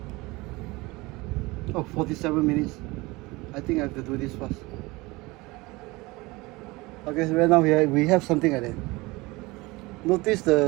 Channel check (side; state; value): left; quieter; 22.6 dB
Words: Oh, 47 minutes. I think I have to do this fast. Okay, so right now we have something like that. Notice